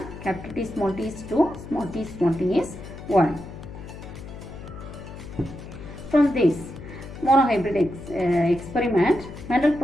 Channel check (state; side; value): noise; left; hum, 13 dB below the sound